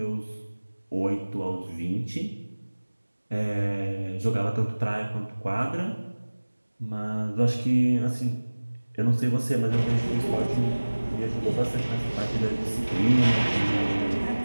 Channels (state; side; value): inverted; both; correlation -1.00